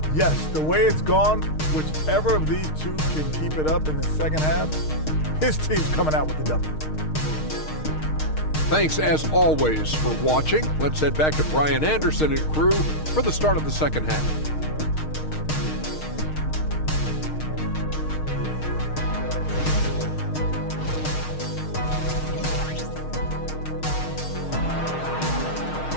Yes, the way it's gone, whichever of these two can keep it up in the second half, his team's coming out with the W. Thanks, as always, for watching. Let's head back to Brian Anderson and crew for the start of the second half.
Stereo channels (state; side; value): late; right; 6.5 ms